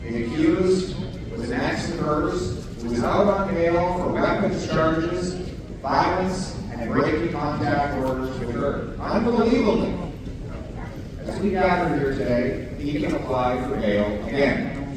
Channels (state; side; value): identical; both; correlation 1.00